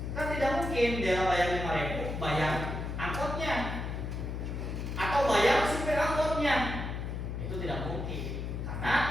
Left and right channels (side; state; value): left; noise; hum, 4 dB below the sound